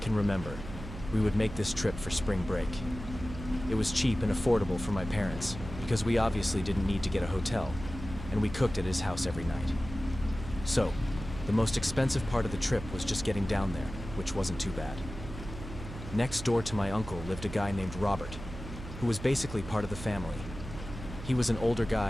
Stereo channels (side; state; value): right; noise; hum, 11 dB below the sound